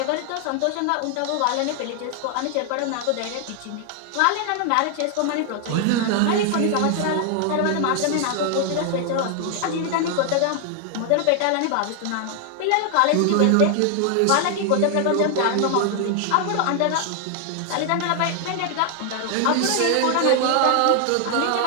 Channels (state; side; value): different; both; correlation 0.00